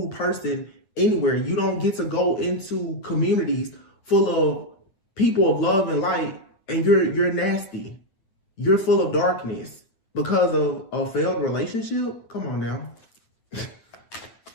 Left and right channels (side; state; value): right; late; 8.8 ms